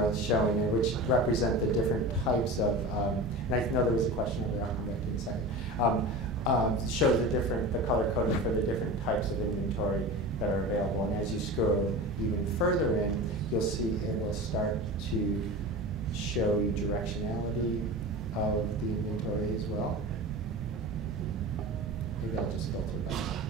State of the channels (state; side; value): normal; both; correlation 0.31